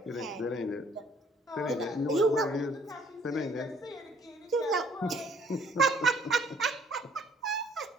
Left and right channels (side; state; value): both; normal; correlation 0.61